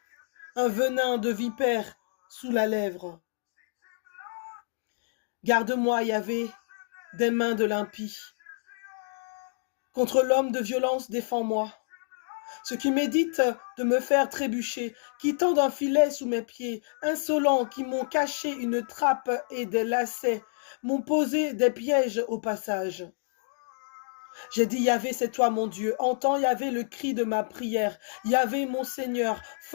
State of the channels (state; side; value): silent; right; digital silence